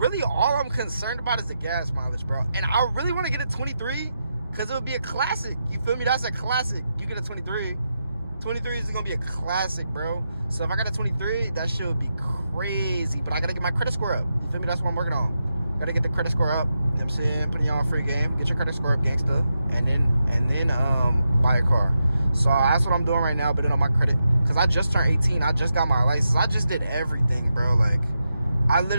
all I'm concerned about is the gas mileage, bro. And I really want to get a 23 because it would be a classic. You feel me? That's a classic. You get a 23. 23 is going to be a classic, bro. So if I got a 23, that shit would be crazy. But I got to get my credit score up. You feel me? That's what I'm working on. Got to get the credit score up. You know what I'm saying? Putting y'all on free game. Get your credit score up, gangsta. And then buy a car. So that's what I'm doing right now, bidding on my credit. Because I just turned 18. I just got my license. I just did everything, bro. Like, I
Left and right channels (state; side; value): inverted; both; correlation -0.87